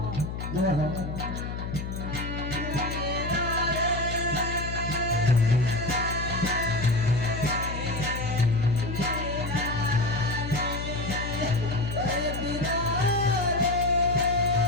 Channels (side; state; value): left; noise; hum, 6 dB below the sound